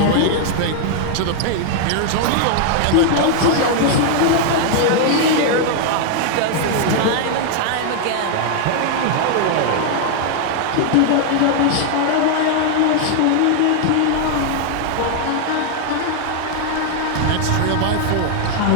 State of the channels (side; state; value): both; different; correlation 0.00